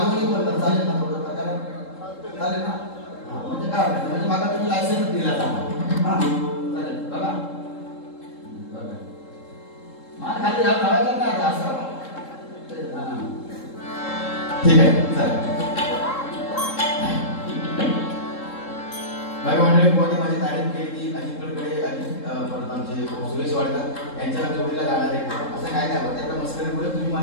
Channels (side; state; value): right; late; 3.7 ms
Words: बोलणार चालेल ना, थोडं प्रकार चालेल ना. म्हणजे काय म्हणजे मला तुम्ही लायसन्स दिला जाणार. हा चालेल बघा मला खाली लावायचं नाही असं. ठीक आहे चालेल. बाय मंडळी, कोणी माझी तारीफ केली, अजित कडकडे, परत आमचे सुरेश वाडकर यांच्या जोडीला जाणार आहे असं काय नाही. त्याच्या मस्करीमुळे तुम्ही